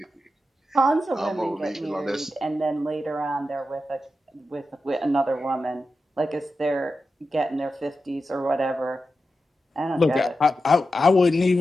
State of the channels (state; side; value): normal; both; correlation 0.90